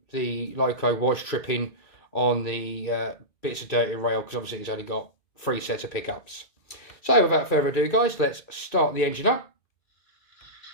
the loco was tripping on the bits of dirty rail because obviously it's only got 3 sets of pickups. So without further ado, guys, let's start the engine up.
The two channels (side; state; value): right; late; 2.3 ms